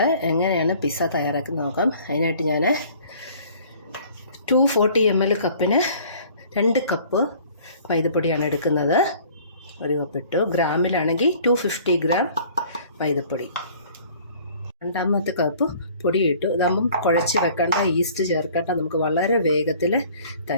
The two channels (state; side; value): inverted; both; correlation -0.52